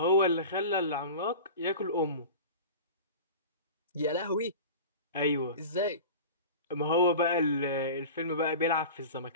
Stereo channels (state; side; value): inverted; both; correlation -0.35